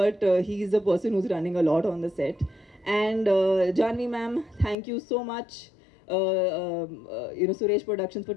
he is the person who's running a lot on the set. And Janvi ma'am, thank you so much, Suresh Productions, for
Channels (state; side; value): drops out; right; at 4.8 s